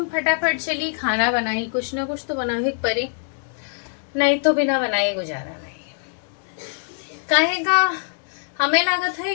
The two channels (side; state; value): right; silent; digital silence